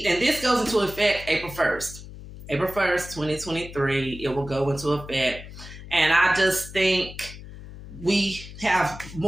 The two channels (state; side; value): noise; left; hum, 14 dB below the sound